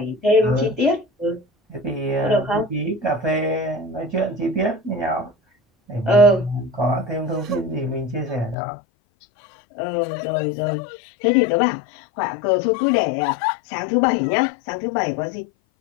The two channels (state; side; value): drops out; right; at 8.6 s